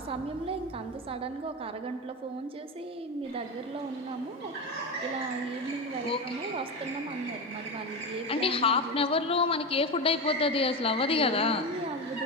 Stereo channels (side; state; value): both; normal; correlation 0.19